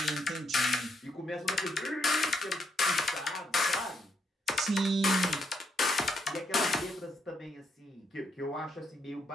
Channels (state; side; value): normal; both; correlation 0.75